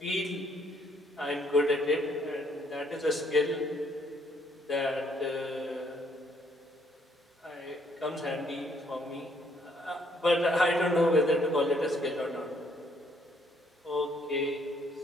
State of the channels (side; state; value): both; normal; correlation 0.67